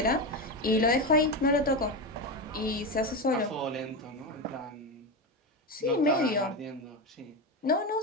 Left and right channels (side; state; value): both; normal; correlation 0.16